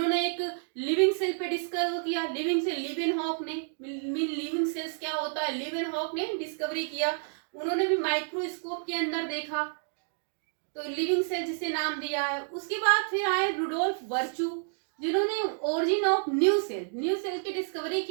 एक लिविंग सेल पे डिस्कवर किया, लिविंग सेल, लिवेनहॉक ने, लिविंग सेल्स क्या होता है, लिवेनहॉक ने डिस्कवरी किया, उन्होंने भी माइक्रोस्कोप के अंदर देखा, तो लिविंग सेल जिसे नाम दिया है। उसके बाद फिर आए रुडोल्फ वर्चू, जिन्होंने ओरिजिन ऑफ न्यू सेल की डिस्कवरी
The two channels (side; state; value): left; silent; digital silence